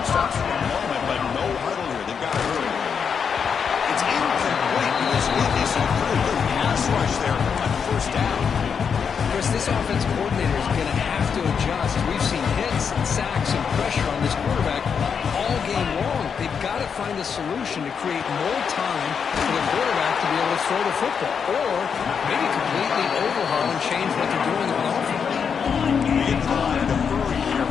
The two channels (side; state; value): right; quieter; 6.6 dB